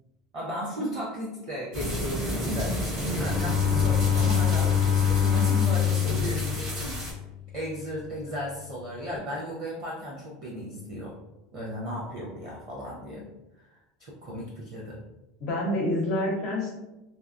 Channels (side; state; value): right; quieter; 4.3 dB